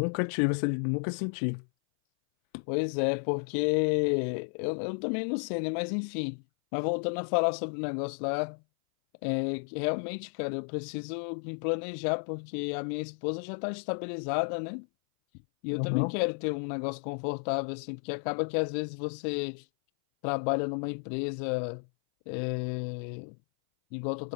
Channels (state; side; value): silent; right; 56 dB below the other